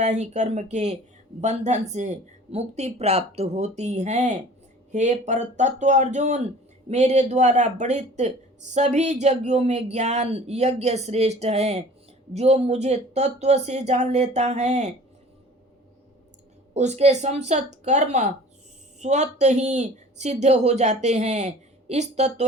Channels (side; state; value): both; normal; correlation 0.46